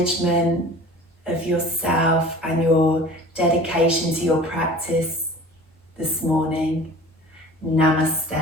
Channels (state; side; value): normal; both; correlation 0.42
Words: of yourself and your dedication to your practice this morning.